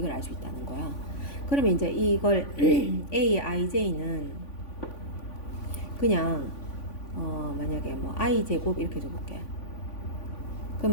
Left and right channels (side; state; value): right; late; 3.5 ms